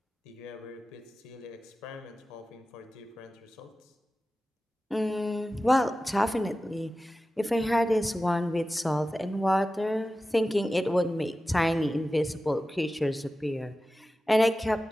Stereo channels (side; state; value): both; normal; correlation 0.95